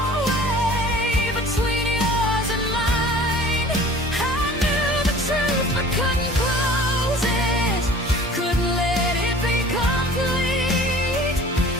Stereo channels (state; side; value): normal; both; correlation 0.46